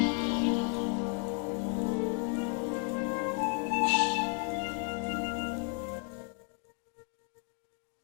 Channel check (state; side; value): quieter; right; 38.3 dB